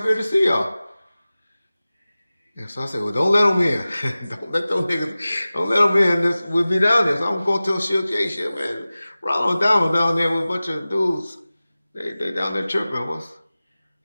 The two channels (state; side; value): inverted; both; correlation -0.97